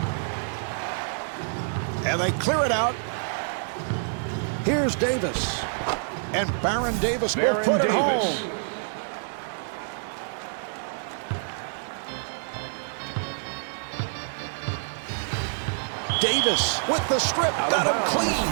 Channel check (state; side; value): silent; left; digital silence